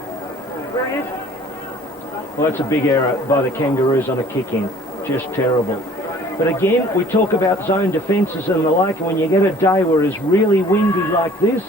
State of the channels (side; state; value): both; normal; correlation 0.52